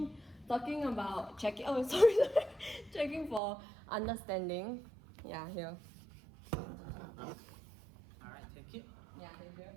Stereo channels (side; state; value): left; drops out; at 3.4 s